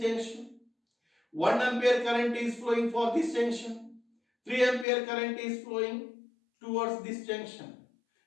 junction. 1 ampere current is flowing for this junction. 3 ampere current is flowing towards this junction.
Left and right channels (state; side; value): drops out; right; at 4.9 s